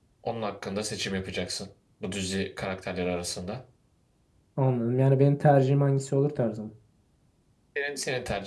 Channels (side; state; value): both; identical; correlation 1.00